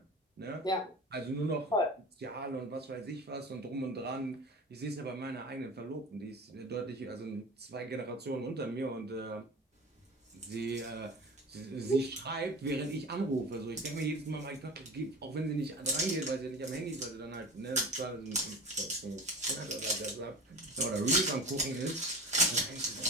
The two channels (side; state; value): both; normal; correlation 0.34